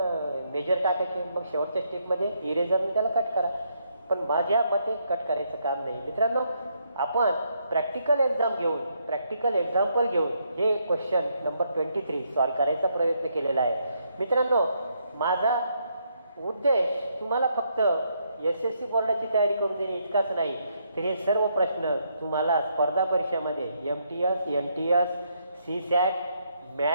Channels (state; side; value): inverted; both; correlation -0.75